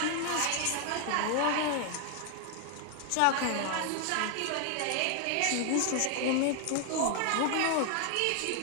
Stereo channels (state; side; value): different; both; correlation 0.00